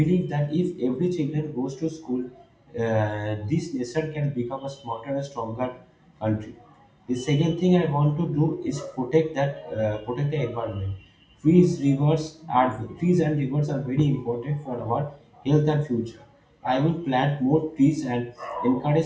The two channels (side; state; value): both; identical; correlation 1.00